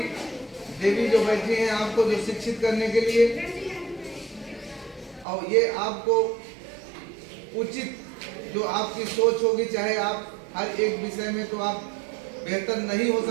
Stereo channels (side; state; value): left; drops out; at 5.2 s